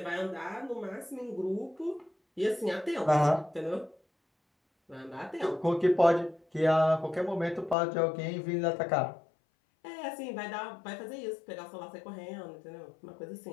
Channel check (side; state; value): right; drops out; at 7.8 s